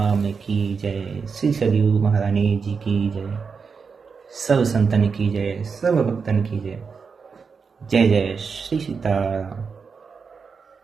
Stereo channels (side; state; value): left; quieter; 5.5 dB